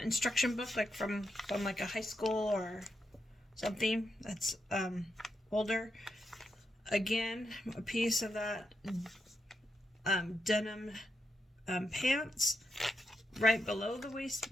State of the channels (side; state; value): both; normal; correlation 0.84